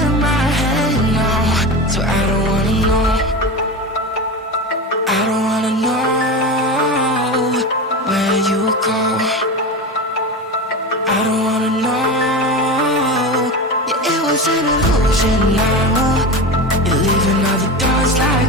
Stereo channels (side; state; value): both; normal; correlation 0.24